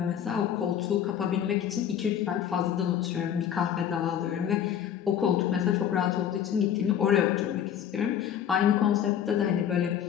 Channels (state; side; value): quieter; right; 9.4 dB